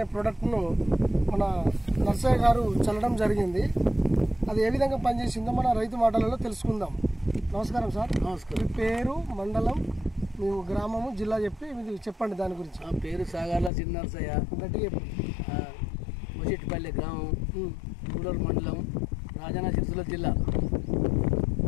ప్రోడక్ట్ను మన నర్సయ్య గారు చల్లడం జరిగింది. అది ఏ విధంగా పనిచేసిందో మన రైతు మాటలలో తెలుసుకుందాం. నమస్కారం సార్. నమస్కారం. మీ పేరు, మండలం, మీ గ్రామము, జిల్లా చెప్పి మీరు చెప్పండి దాని గురించి. ఆ పేరు సాగర్ల చిన్న నర్సయ్య, గట్టిగా చెప్పండి. మొచెట్టిపల్లి గ్రామం, గూడూరు మండలం, రాజన్న సిరిసిల్ల జిల్లా.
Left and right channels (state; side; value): drops out; right; at 13.7 s